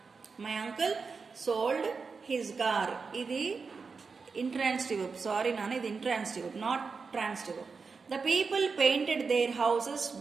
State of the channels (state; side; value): quieter; left; 4.9 dB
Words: My uncle sold his car. ఇది intransitive verb. Sorry నాన్న, ఇది intransitive verb, not transitive verb. The people painted their houses